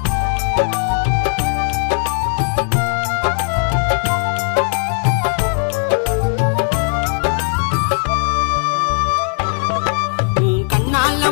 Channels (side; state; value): right; silent; 56 dB below the other